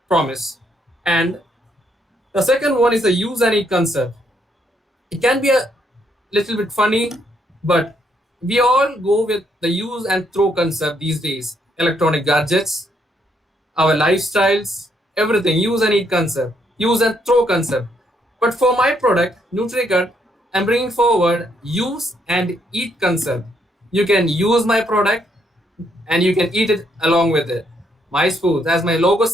promise. And the second one is the use and eat concept. It can be a little bit funny, but we all go with the use and throw concept these days. Electronic gadgets, our lifestyles, everything, use and eat concept, use and throw concept. But for my product, NutriGut, I'm bringing forward use and eat concept. You can use my product and you can eat it along with it. My spoons, as my logo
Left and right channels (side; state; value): both; normal; correlation 0.73